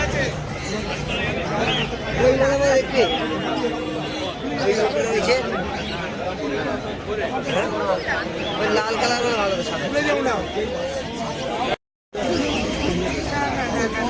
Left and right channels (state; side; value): identical; both; correlation 1.00